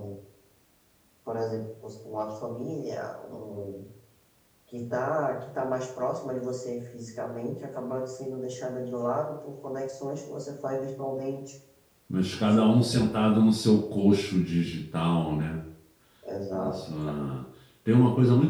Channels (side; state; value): both; identical; correlation 1.00